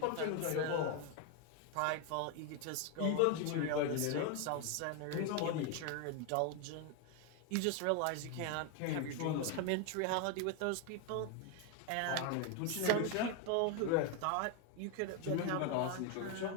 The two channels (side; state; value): both; different; correlation 0.01